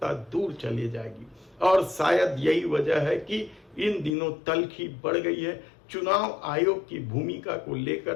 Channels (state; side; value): drops out; right; at 4.2 s